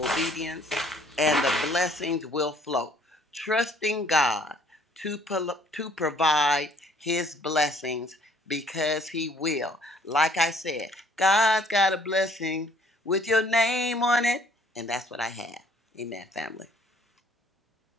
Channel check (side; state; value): both; normal; correlation 0.59